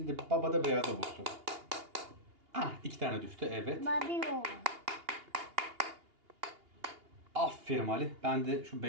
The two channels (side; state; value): left; late; 2.8 ms